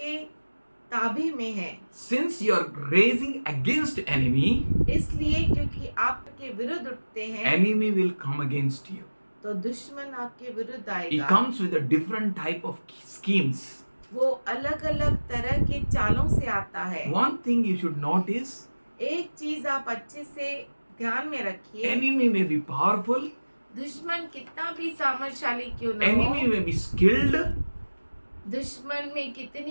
ताबे में हैं। Since you are raising against enemy, इसलिए क्योंकि आपके विरुद्ध उठते हैं, enemy will come against you. तो दुश्मन आपके विरुद्ध He आएगा। comes with a different type of schemes. वो अलग अलग तरह के चालों से आता है। One thing you should notice, एक चीज आप अच्छे से ध्यान में रखिए, enemy may be powerful, दुश्मन कितना भी सामर्थशाली क्यों न enemy हो, may be skilled, दुश्मन में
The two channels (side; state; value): both; inverted; correlation -1.00